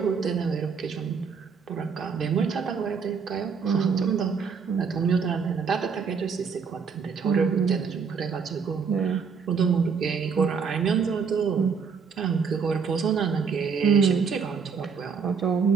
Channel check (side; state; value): left; quieter; 5.9 dB